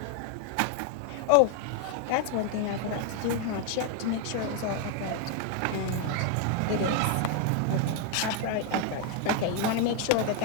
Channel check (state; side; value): different; both; correlation 0.00